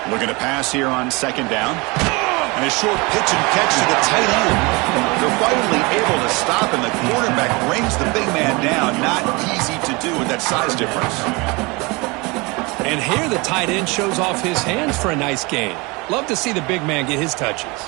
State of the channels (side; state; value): left; quieter; 26.1 dB